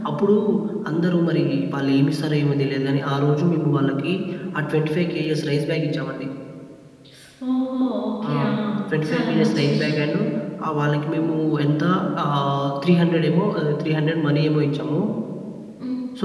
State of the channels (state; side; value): identical; both; correlation 1.00